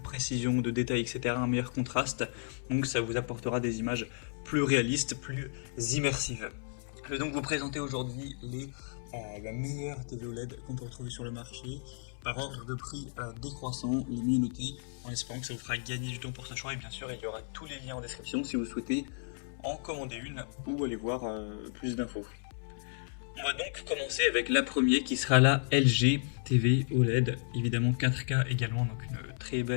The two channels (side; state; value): right; silent; 56 dB below the other